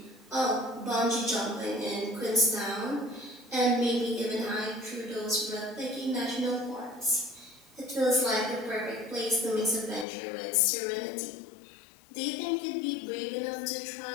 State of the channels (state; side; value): drops out; right; at 10.1 s